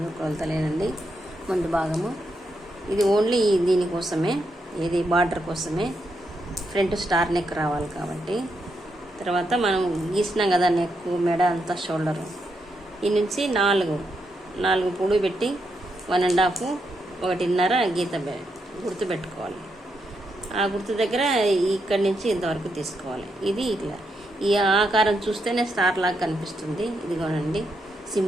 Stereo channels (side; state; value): both; normal; correlation 0.81